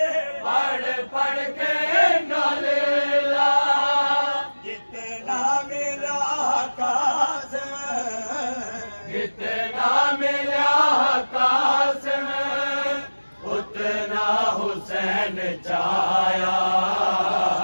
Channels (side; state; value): both; inverted; correlation -1.00